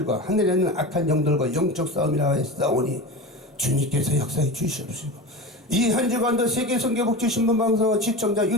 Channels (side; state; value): both; normal; correlation 0.28